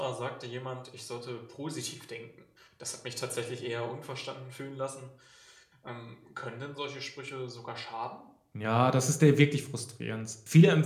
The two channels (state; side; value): identical; both; correlation 1.00